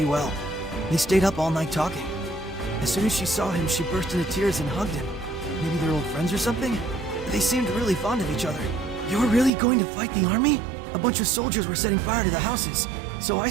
well. They stayed up all night talking. As soon as she saw him, she burst into tears and hugged him. Maybe they're old friends or something? They seemed really fond of each other. You're really going to fight the army? A bunch of soldiers were setting fire to the houses, so I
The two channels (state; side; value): drops out; left; at 9.5 s